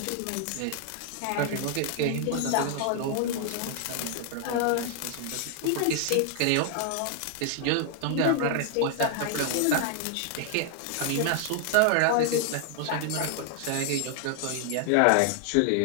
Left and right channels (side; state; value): both; different; correlation 0.00